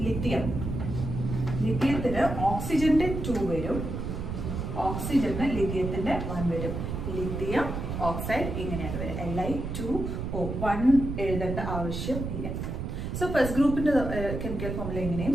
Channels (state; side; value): noise; right; rumble, 4 dB below the sound